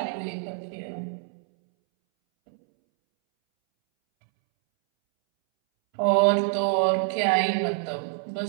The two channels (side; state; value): left; silent; 61 dB below the other